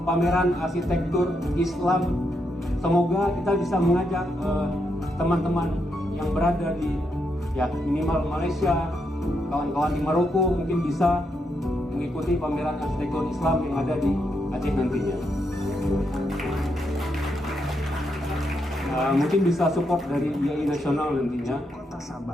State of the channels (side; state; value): both; normal; correlation 0.81